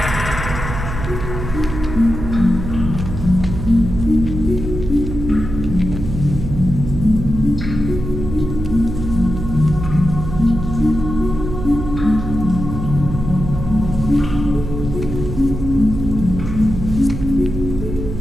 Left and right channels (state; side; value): noise; right; hum, 6 dB below the sound